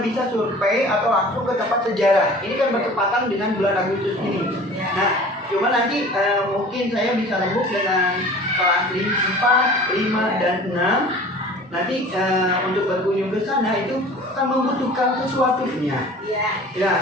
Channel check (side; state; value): both; normal; correlation 0.44